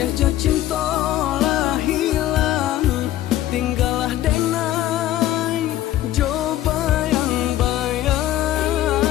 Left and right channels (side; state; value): right; quieter; 13.6 dB